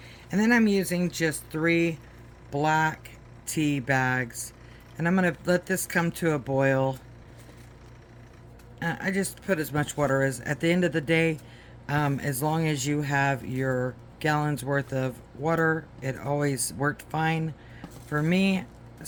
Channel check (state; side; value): identical; both; correlation 1.00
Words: And then I'm using just 3 black tea bags. And I'm going to let this come to a boil. I just put as much water as, at the end of the day, as long as you have your gallons worth of water, it always worked fine for me.